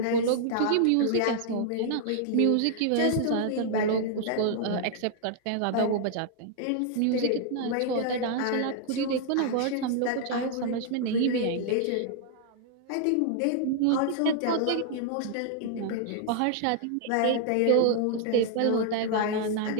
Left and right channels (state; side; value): different; both; correlation -0.01